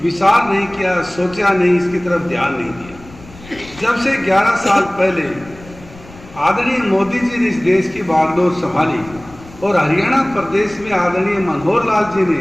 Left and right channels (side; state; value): left; noise; rumble, 20 dB below the sound